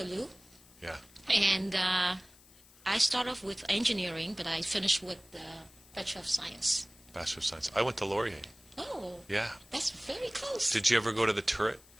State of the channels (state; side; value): noise; left; hiss, 25 dB below the sound